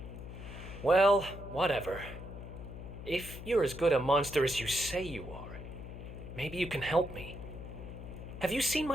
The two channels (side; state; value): left; noise; hum, 11 dB below the sound